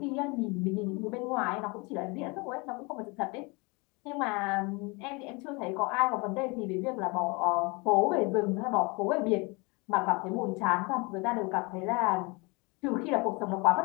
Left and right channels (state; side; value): quieter; right; 28.1 dB